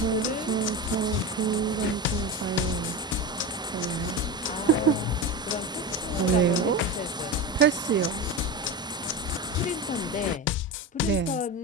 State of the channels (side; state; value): both; normal; correlation 0.22